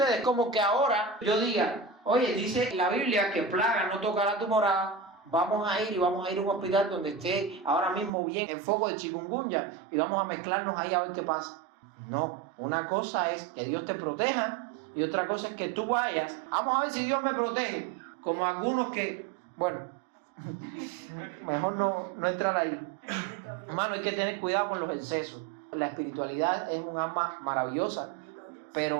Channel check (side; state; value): left; drops out; at 8.1 s